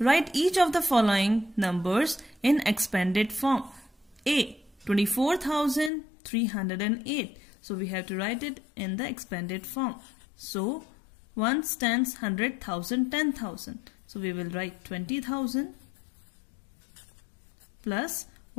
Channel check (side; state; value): right; drops out; at 5.9 s